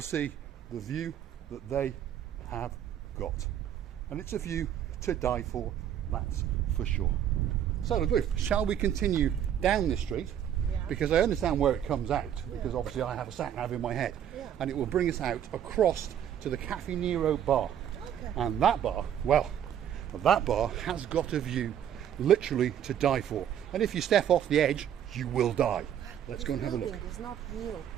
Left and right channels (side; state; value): left; quieter; 9.9 dB